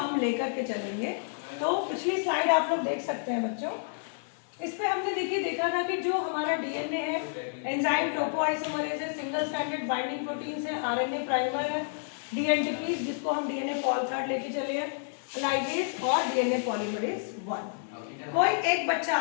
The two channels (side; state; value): right; silent; 58 dB below the other